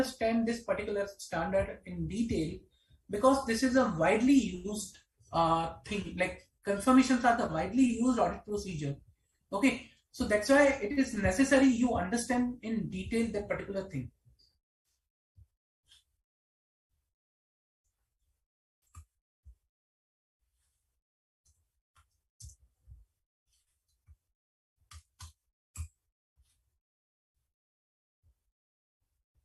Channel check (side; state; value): both; identical; correlation 1.00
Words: this particular standard in detail because this is a widely used thing. Like confirmations are the widely used audit procedure. Okay, so that's why it is necessary you understand in detail that particular thing.